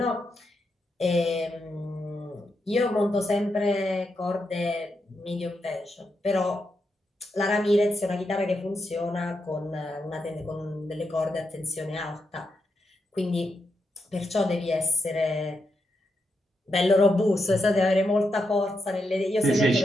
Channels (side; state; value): both; normal; correlation 0.84